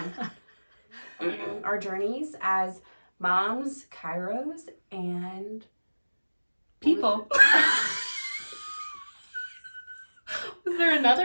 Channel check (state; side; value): inverted; both; correlation -1.00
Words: on. Our journeys as moms, chiros, and people. Was there